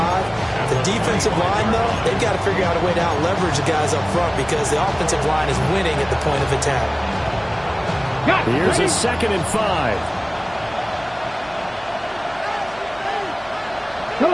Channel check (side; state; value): right; noise; hum, 24 dB below the sound